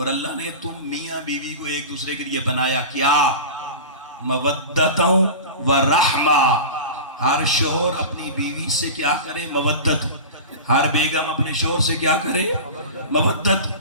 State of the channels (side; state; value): both; inverted; correlation -0.31